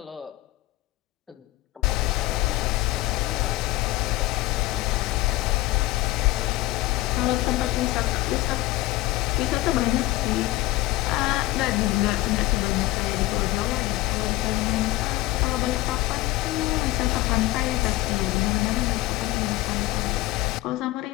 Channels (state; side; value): quieter; right; 18.5 dB